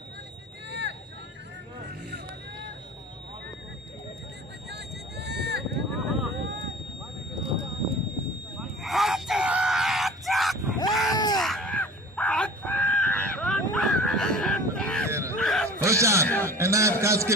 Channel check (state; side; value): normal; both; correlation 0.42